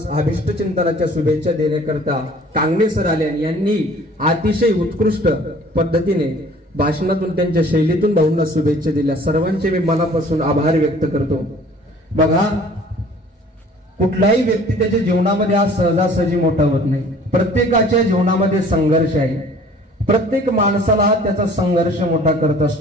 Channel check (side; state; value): both; normal; correlation 0.51